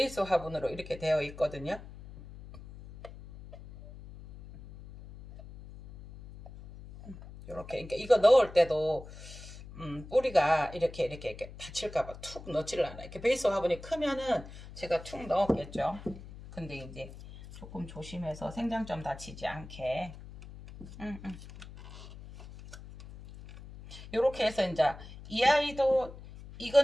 화분으로 이렇게 되어 있거든요. 이렇게 그러니까 이거 넣을 때도 뿌리가 이렇게 다칠까봐 툭 넣지를 않아요. 이렇게 베이스 화분이 크면은 제가 툭 넣었겠죠. 근데 이제 조금 조심해서 생장점 다치지 않게. 이렇게 해서 이제 이 아이도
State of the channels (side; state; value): left; noise; hum, 15 dB below the sound